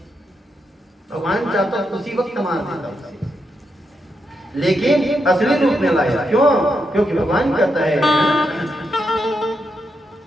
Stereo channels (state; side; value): normal; both; correlation 0.83